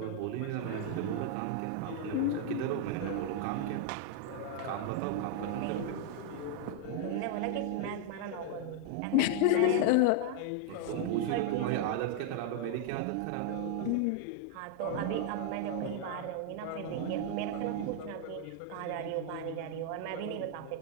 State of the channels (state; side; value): different; both; correlation 0.00